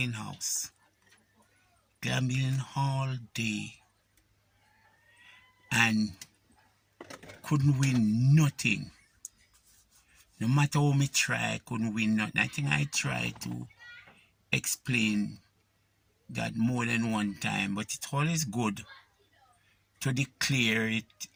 house. Gambling all day. And couldn't win nothing. No matter how me try, I couldn't win nothing. I think I tried to explain that more than one time, but it's always good to declare it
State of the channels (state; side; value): identical; both; correlation 1.00